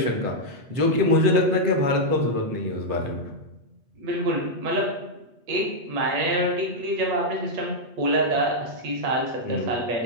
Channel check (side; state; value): left; late; 8.2 ms